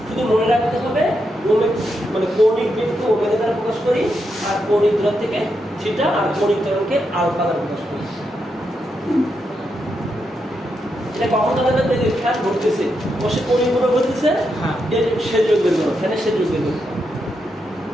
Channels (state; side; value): normal; both; correlation 0.83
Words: শুধু মনে রাখতে হবে মানে কৌণিক বেগকে ওমেগা দ্বারা প্রকাশ করি, আর কৌণিক দূরত্ব থেকে থিটা, আর কৌণিক ত্বরণকে আলফা দ্বারা প্রকাশ করি। এটা কখন তাদের বেগে ফ্যান ঘটতেছে, বসে কৌণিক বরাবর ঘটতেছে, এর শেষ বেগ বের করো, ফ্যানের শেষ বেগ বের করো,